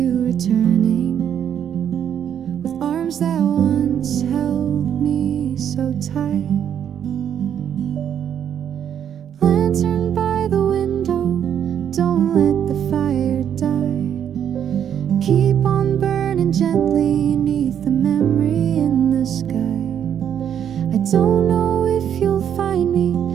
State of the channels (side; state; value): left; quieter; 9.1 dB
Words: returning, with arms that once held me so tight. Lantern by the window, don't let the fire die. Keep on burning gently beneath the memory in the sky. I don't know if you'll find me,